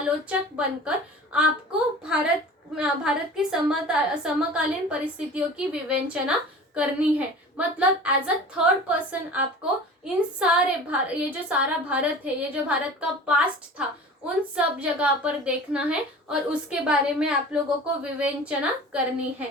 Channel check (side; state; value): both; normal; correlation 0.40